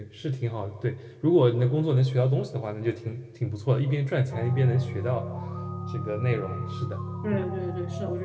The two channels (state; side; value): identical; both; correlation 1.00